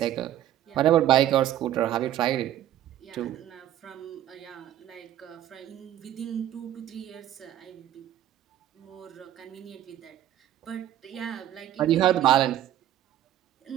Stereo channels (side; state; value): left; quieter; 12.2 dB